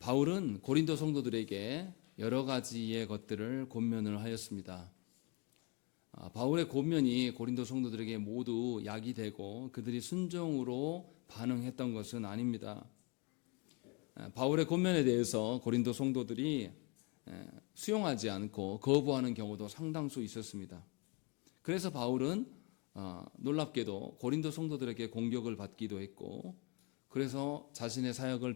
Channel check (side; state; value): right; quieter; 30.5 dB